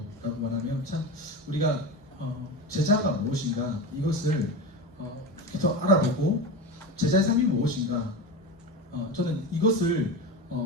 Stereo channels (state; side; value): normal; both; correlation 0.23